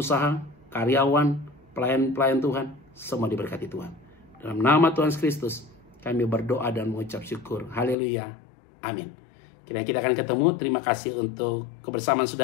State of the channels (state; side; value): drops out; right; at 8.0 s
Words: karyawan, pelayan-pelayan Tuhan, semua diberkati Tuhan. Dalam nama Tuhan Kristus, kami berdoa dan mengucap syukur. Haleluya. Amin. Kiranya kita akan ketemu. Terima kasih untuk kebersamaan